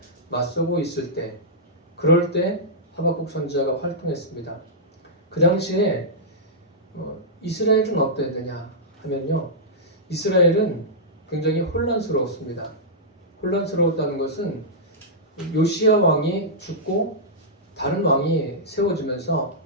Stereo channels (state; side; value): normal; both; correlation -0.11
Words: 맞서고 있을 때, 그럴 때 하박국 선지자가 활동했습니다. 그 당시에 이스라엘은 어땠느냐 하면요, 이스라엘은 굉장히 혼란스러웠습니다. 혼란스러웠다는 것은 요시야 왕이 죽고 다른 왕이 세워지면서